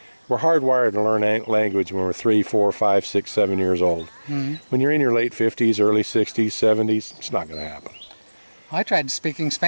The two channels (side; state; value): both; inverted; correlation -1.00